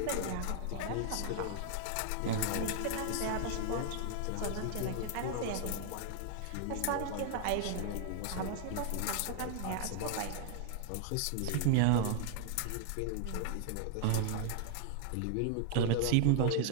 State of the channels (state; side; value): different; both; correlation 0.00